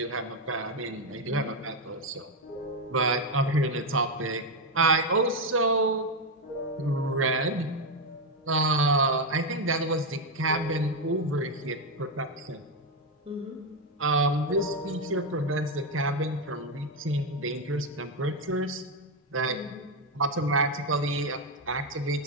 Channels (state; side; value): normal; both; correlation 0.06